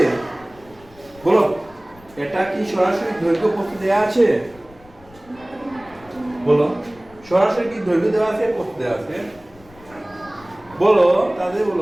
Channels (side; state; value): left; noise; rumble, 25 dB below the sound